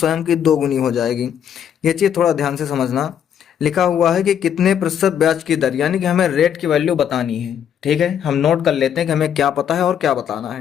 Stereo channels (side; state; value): right; quieter; 9.0 dB